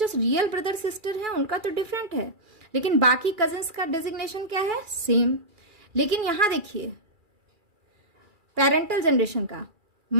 रियल ब्रदर सिस्टर हैं उनका तो डिफरेंट है, लेकिन बाकी कजिन्स का डेजिग्नेशन क्या है, सेम। लेकिन यहां देखिए पेरेंटल जनरेशन का,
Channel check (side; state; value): left; late; 2.4 ms